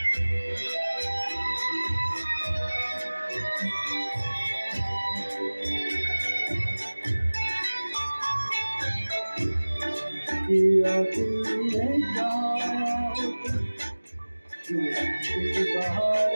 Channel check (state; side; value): inverted; both; correlation -1.00